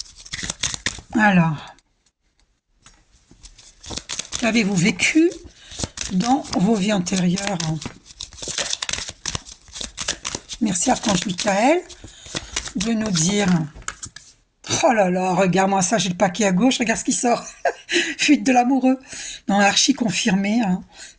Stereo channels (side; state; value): both; identical; correlation 1.00